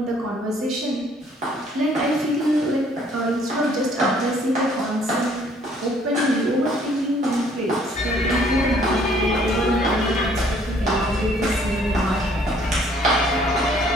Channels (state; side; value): normal; both; correlation 0.61